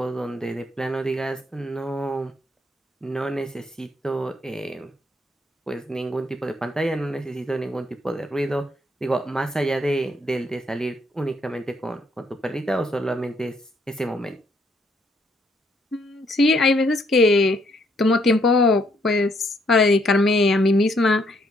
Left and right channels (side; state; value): both; normal; correlation 0.70